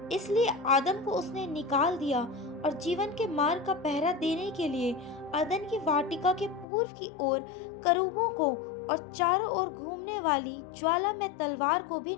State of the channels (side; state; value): right; drops out; at 6.7 s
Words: इसलिए आदम को उसने निकाल दिया और जीवन के मार्ग का पहरा देने के लिए अदन की वाटिका के पूर्व की ओर करूबों को और चारों ओर घूमने वाली ज्वाला में तलवार को भी